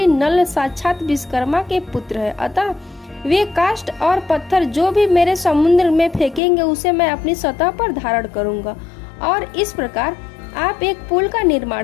नल साक्षात विश्वकर्मा के पुत्र है, अतः वे काष्ठ और पत्थर जो भी मेरे समुद्र में फेंकेंगे उसे मैं अपनी सतह पर धारण करूंगा। और इस प्रकार आप एक पुल का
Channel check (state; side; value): drops out; right; at 6.4 s